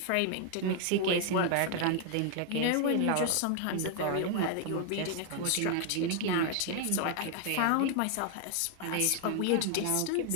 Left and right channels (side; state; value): both; different; correlation 0.00